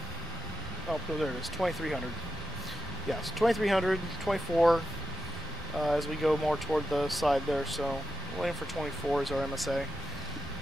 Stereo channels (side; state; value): both; normal; correlation 0.87